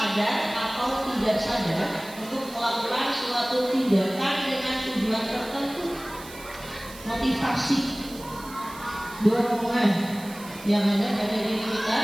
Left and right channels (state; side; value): noise; right; hiss, 17 dB below the sound